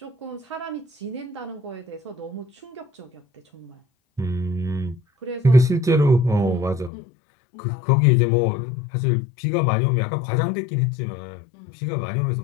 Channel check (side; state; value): right; drops out; at 6.9 s